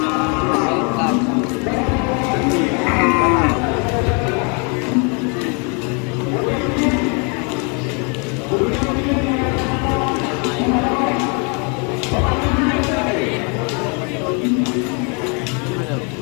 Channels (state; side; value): quieter; right; 35.0 dB